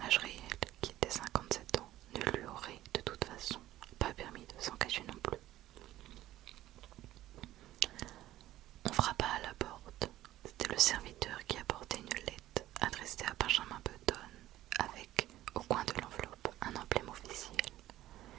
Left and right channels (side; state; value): left; quieter; 14.6 dB